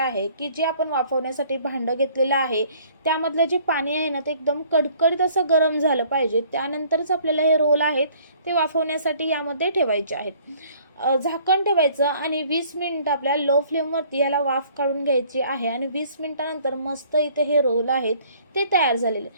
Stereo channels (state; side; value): inverted; both; correlation -0.57